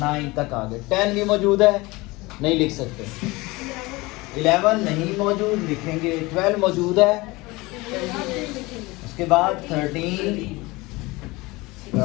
तक आ गए। 10 भी मौजूद है, नहीं लिख सकते। 11 नहीं मौजूद, लिखेंगे। 12 मौजूद है, उसके बाद 13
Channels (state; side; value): quieter; right; 22.4 dB